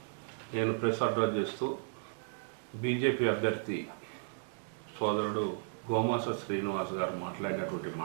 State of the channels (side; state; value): left; silent; digital silence